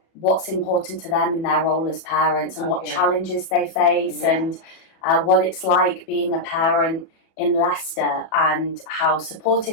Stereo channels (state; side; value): late; right; 37 ms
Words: what's important to them in their role as parents and what challenges they face and what it's like being a parent in Leicester and how